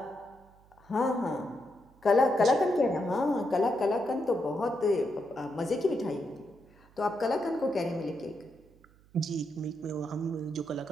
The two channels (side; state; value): right; noise; hum, 28 dB below the sound